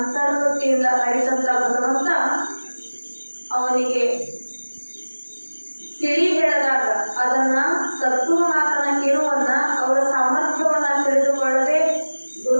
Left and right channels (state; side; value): inverted; both; correlation -1.00